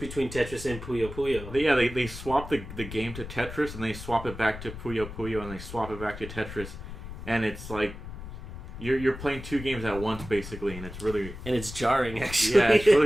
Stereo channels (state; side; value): noise; left; rumble, 11 dB below the sound